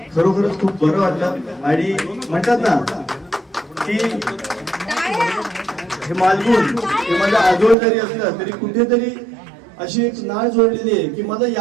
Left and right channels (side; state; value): left; drops out; at 7.8 s